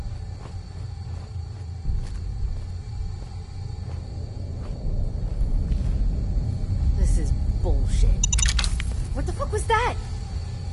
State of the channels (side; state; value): both; identical; correlation 1.00